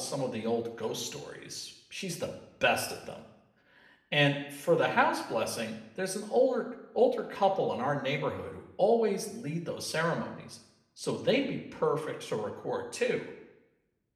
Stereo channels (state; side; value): identical; both; correlation 1.00